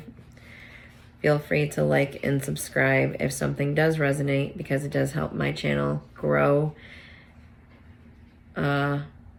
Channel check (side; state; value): both; identical; correlation 1.00